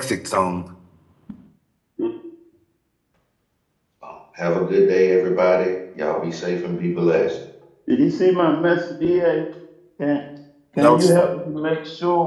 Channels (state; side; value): identical; both; correlation 1.00